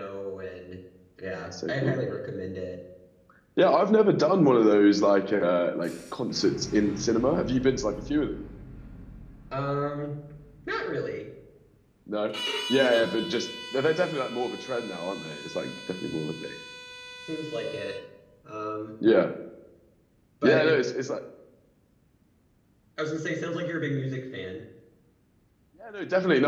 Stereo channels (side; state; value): both; identical; correlation 1.00